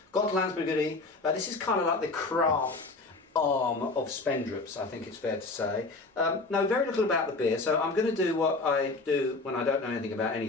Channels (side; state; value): right; quieter; 3.5 dB